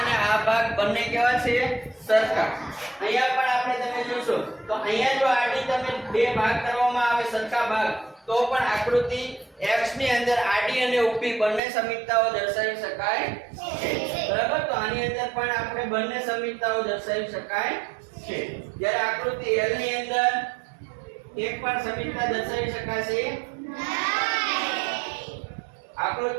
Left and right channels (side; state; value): left; drops out; at 11.6 s